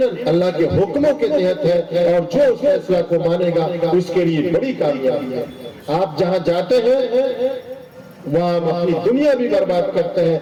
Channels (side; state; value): both; identical; correlation 1.00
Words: اللہ کے حکموں کے تحت ہے، اور جو اس فیصلہ کو مانے گا اس کے لیے بڑی کامیابی ہے۔ آپ جہاں جاتے ہیں وہاں اپنی دنیا بھی برباد کرتے